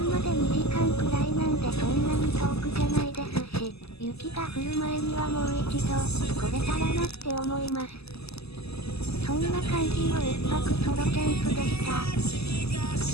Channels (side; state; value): right; late; 0.79 ms